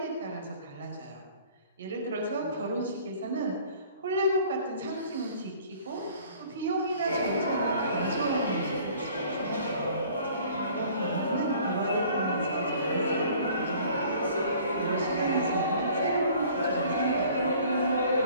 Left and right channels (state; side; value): inverted; both; correlation -0.52